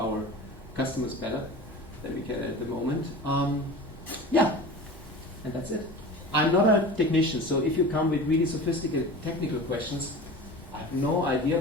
customers better than we can at the moment. Yeah, and that's it. I'm not a technician, so if you come with really sophisticated technical questions, I have no idea,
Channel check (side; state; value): right; noise; hum, 27 dB below the sound